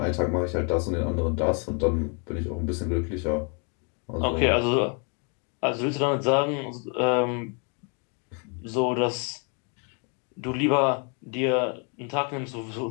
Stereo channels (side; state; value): right; quieter; 36.5 dB